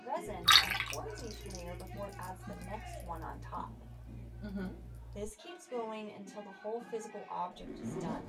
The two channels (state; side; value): identical; both; correlation 1.00